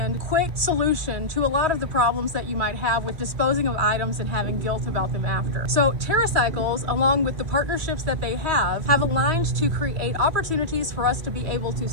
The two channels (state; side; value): late; left; 3.1 ms